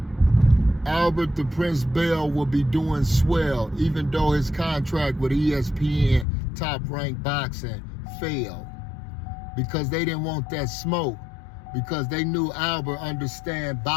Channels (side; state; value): right; drops out; at 6.2 s